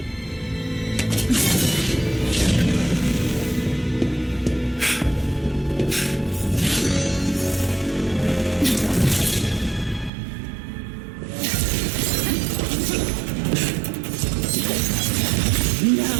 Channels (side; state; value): left; drops out; at 10.1 s